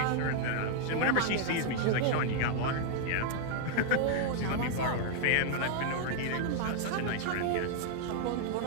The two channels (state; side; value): different; both; correlation 0.00